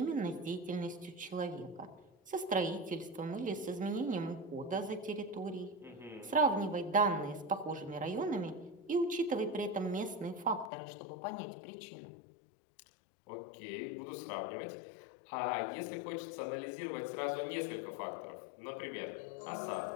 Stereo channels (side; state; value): right; drops out; at 10.7 s